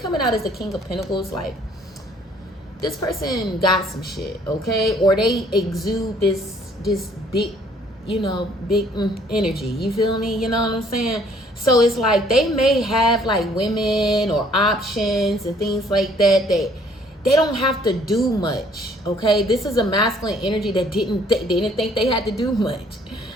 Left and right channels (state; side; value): normal; both; correlation 0.61